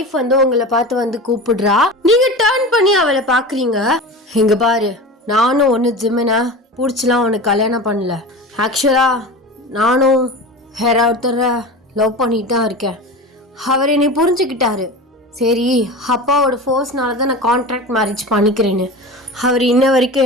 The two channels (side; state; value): both; normal; correlation 0.30